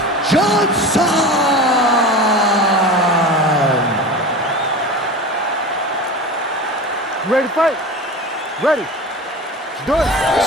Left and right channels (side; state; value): both; normal; correlation 0.31